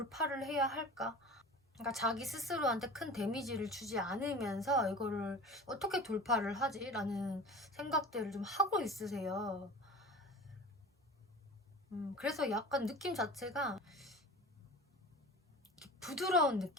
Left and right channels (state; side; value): normal; both; correlation 0.36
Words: 해야 할까. 그러니까 자기 스스로한테 큰 데미지를 주지 않으면서 이거를 어떻게 돌파를 하지? 라는 생각들을 좀 하고 있으세요. 그래서 약간 느낌 자체가 부드러운